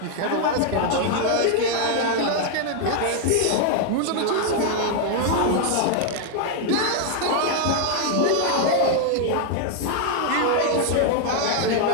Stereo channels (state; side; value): different; both; correlation 0.00